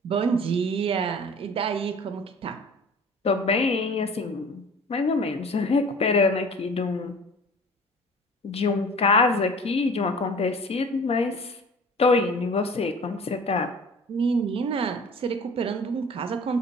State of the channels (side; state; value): both; normal; correlation 0.43